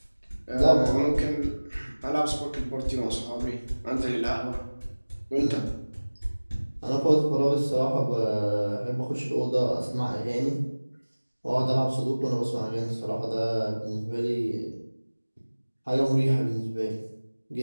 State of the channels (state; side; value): inverted; both; correlation -1.00